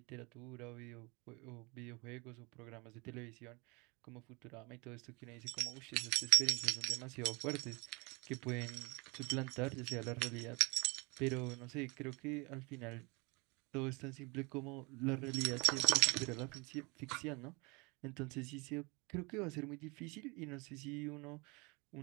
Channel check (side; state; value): left; quieter; 28.1 dB